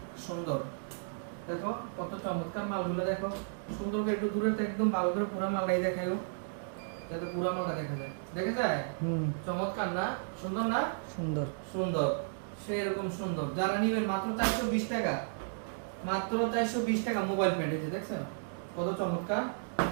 সুন্দর, দেখো কত চমৎকার মালগুলো। দেখো সুন্দর করে একটু দূরে থেকে একদম ভালো করে পুরো মালটাই দেখায়ও, যাতে পুরো মালটা দেখা যায়। দেখা যায়? চমৎকার না, সুন্দর না? সুন্দর সুন্দর, সেরকম সুন্দর। যারা নিবেন মাত্র 420 টাকা, মাত্র 420 টাকা মোবাইল প্যান্ট। এই যে দেখছেন কত চমৎকার,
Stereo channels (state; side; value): silent; left; digital silence